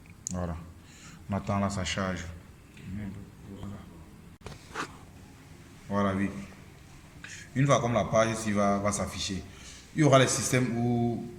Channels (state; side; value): identical; both; correlation 1.00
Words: Voilà. On attend là, ça charge. Voilà, oui. Une fois comme la page ici va s'afficher, il y aura les systèmes où